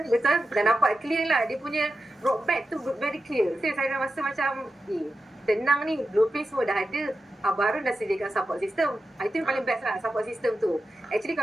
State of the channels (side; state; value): both; normal; correlation 0.91